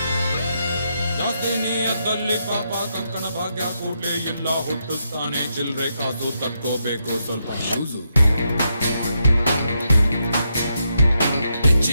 ನಿಯತ್ತಲ್ಲಿ ಪಾಪ ಕಂಕಣ ಭಾಗ್ಯ ಕೂಡ್ಲೇ ಇಲ್ಲ ಹುಟ್ಟುತ್ತಾನೆ ಚಿಲ್ರೆ ಕಾಸು ತಕ್ಕೋಬೇಕು ಸ್ವಲ್ಪ ಯೂಸು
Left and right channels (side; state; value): both; inverted; correlation -0.82